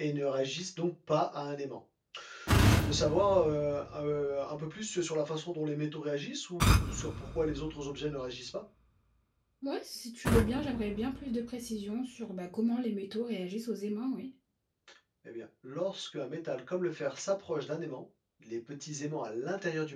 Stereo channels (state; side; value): identical; both; correlation 1.00